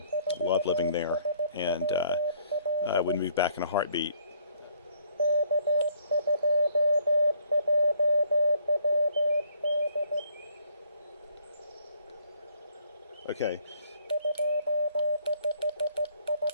Loved living there, and I would move back in a heartbeat. Okay.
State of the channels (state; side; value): inverted; both; correlation -0.62